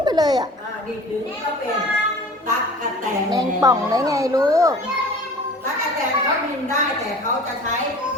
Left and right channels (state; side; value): normal; both; correlation 0.42